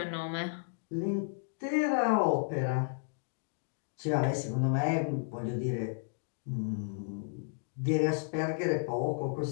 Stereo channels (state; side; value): silent; right; digital silence